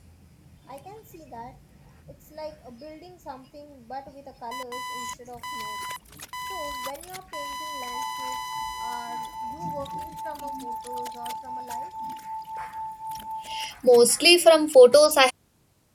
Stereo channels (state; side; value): identical; both; correlation 1.00